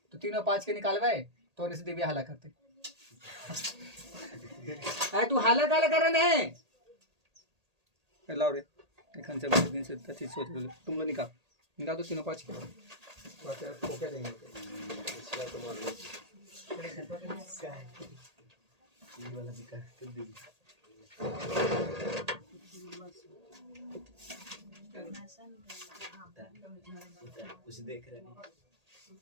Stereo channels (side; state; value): left; late; 1.8 ms